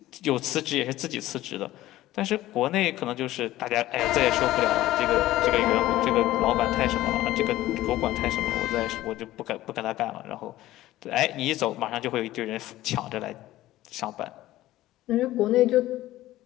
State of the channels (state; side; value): quieter; right; 15.6 dB